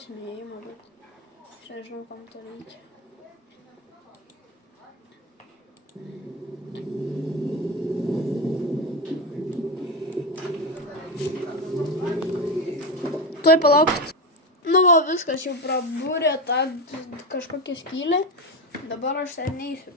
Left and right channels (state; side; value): normal; both; correlation 0.15